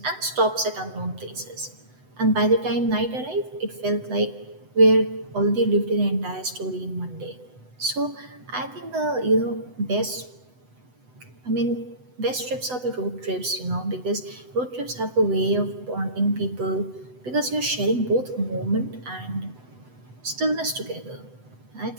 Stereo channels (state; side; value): late; left; 8.0 ms